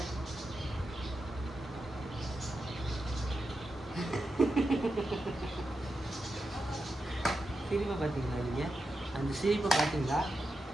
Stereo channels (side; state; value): both; normal; correlation 0.88